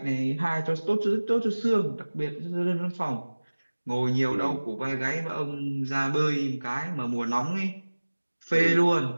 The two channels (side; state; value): both; inverted; correlation -1.00